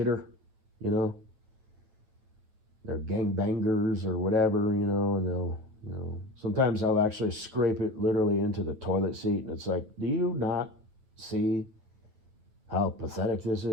you know. They're gangbangers or whatever, and they'll, sometimes I'll actually scrape it literally into the toilet seat, and it's like, do you not see how pathetic this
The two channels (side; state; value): left; late; 9.1 ms